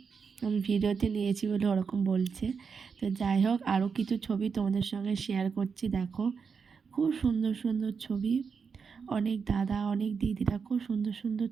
আমি ভিডিওতে নিয়েছি বলে ওরকম বলছে। তো যাই হোক, আরও কিছু ছবি তোমাদের সঙ্গে শেয়ার করছি, দেখো, খুব সুন্দর সুন্দর ছবি। অনেক দাদা, অনেক দিদিরা খুব সুন্দর সুন্দর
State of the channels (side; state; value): left; quieter; 5.8 dB